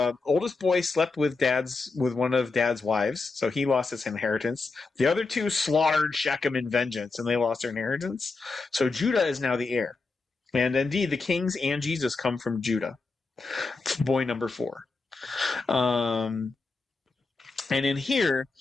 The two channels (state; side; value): quieter; right; 3.9 dB